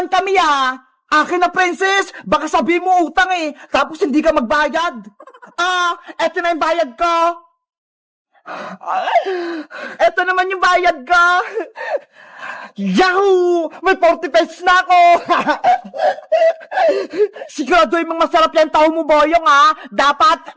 kami, ha! Akin na, princess! Baka sabihin mo utang eh! Tapos hindi ka magbayad! Eto na yung bayad ko! Eto naman yung bayad ko! Yahoo! May 40 pesos na ako! Siguraduhin mong masarap yan tao mo, Boyong, ha? Dapat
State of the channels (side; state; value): both; identical; correlation 1.00